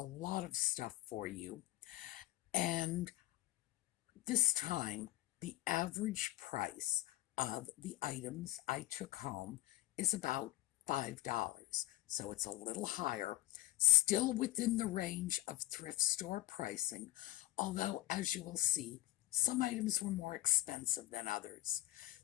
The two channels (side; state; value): right; quieter; 17.1 dB